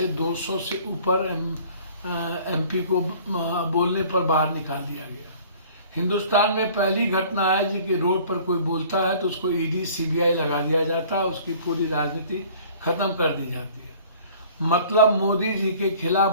200 से ऊपर एमपी को बोलने पर बाहर निकाल दिया गया। हिंदुस्तान में पहली घटना है कि रोड पर कोई बोलता है तो उसको ईडी सीबीआई लगा दिया जाता है, उसकी पूरी राजनीति खत्म कर दी जाती है। मतलब मोदी जी के खिलाफ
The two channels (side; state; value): both; inverted; correlation -0.50